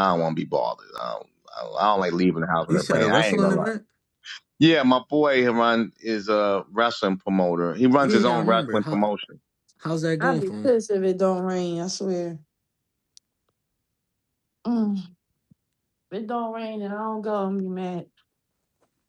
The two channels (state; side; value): identical; both; correlation 1.00